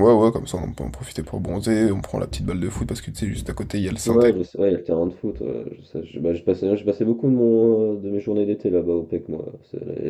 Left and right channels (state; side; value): identical; both; correlation 1.00